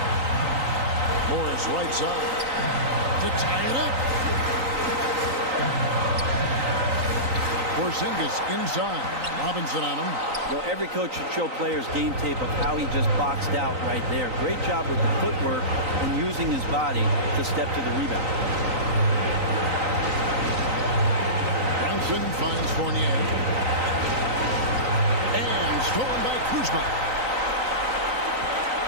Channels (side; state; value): left; late; 3.9 ms